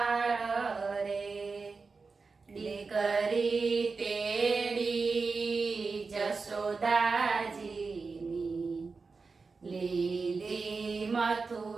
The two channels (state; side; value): quieter; left; 4.4 dB